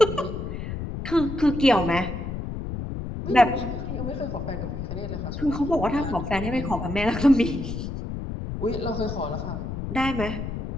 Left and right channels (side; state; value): left; noise; rumble, 5 dB below the sound